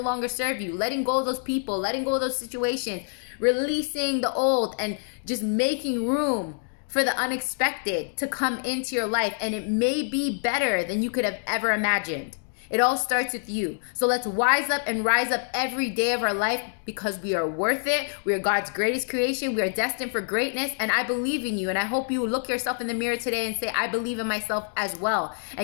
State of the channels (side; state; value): right; silent; digital silence